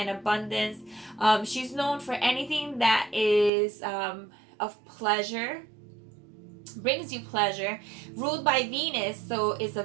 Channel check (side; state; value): left; drops out; at 3.5 s